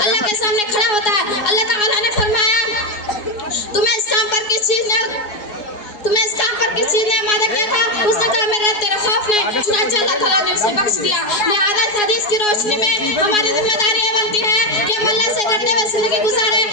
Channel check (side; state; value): right; late; 4.8 ms